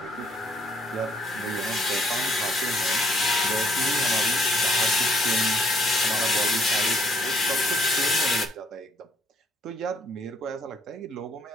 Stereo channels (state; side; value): normal; both; correlation 0.66